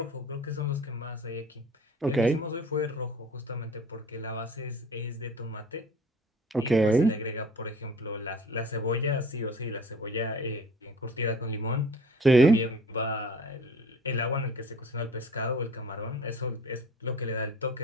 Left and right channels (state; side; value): normal; both; correlation 0.46